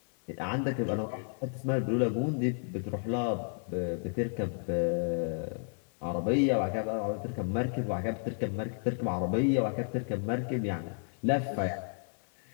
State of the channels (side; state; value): right; silent; 56 dB below the other